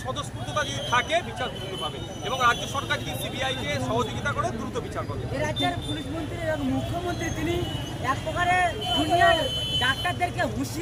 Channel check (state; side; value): identical; both; correlation 1.00